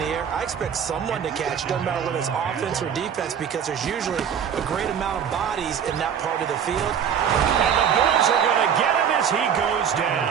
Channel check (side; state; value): left; quieter; 8.1 dB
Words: air, I expect someone to catch. Doesn't matter whether it's offense or defense, because there's usually a great amount of bodies in that part of the field. And the Bills are going to get him as he goes